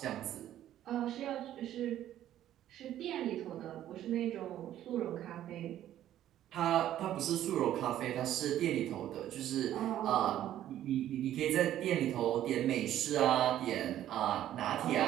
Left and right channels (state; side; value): quieter; left; 12.2 dB